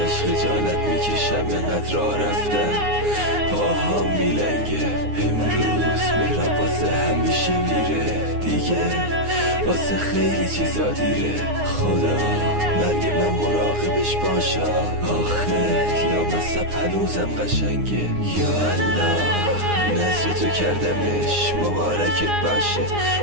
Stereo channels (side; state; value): left; late; 9.7 ms